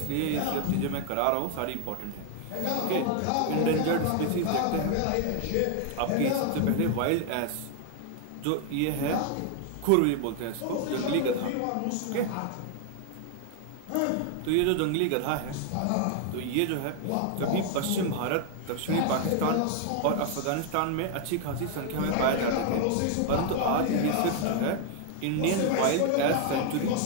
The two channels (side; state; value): both; different; correlation 0.00